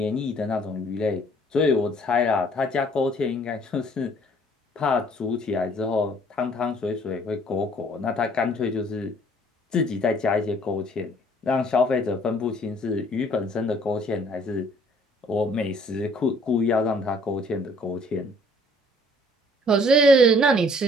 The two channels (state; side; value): normal; both; correlation 0.58